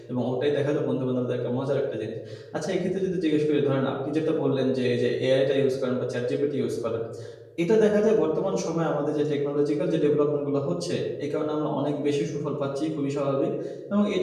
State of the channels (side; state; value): both; identical; correlation 1.00